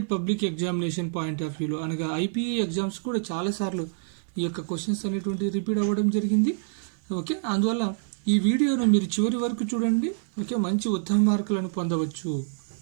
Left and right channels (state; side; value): silent; left; digital silence